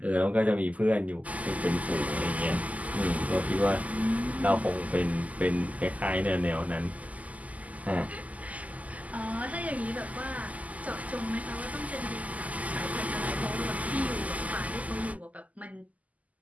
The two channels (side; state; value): left; late; 0.074 ms